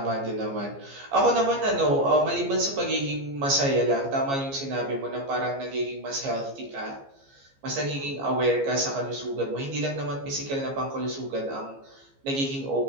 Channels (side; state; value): left; late; 15 ms